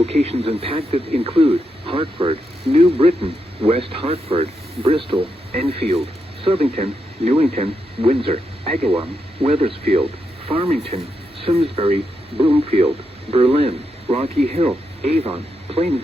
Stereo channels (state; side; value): normal; both; correlation 0.83